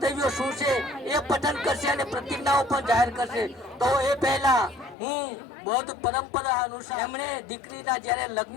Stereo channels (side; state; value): right; drops out; at 5.0 s